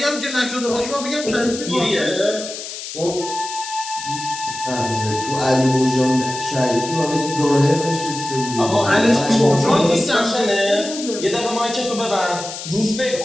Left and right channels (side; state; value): left; noise; hiss, 9 dB below the sound